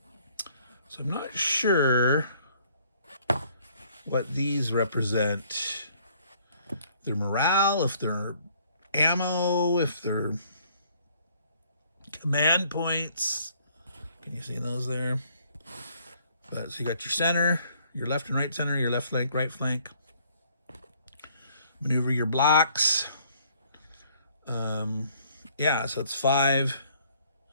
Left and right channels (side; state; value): both; inverted; correlation -0.62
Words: So I'm not sure what these represent. Their morale, if they're ammo, if they're command points. Can you see those there? But so you got your center, your left and right center, your left flank, right flank. Maneuver your blocks. Yeah, so it's 5,